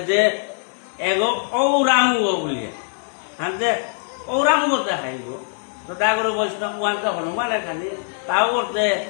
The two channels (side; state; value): right; silent; digital silence